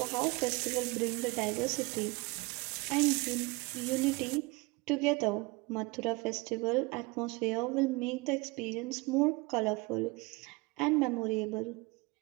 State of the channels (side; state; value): left; quieter; 25.4 dB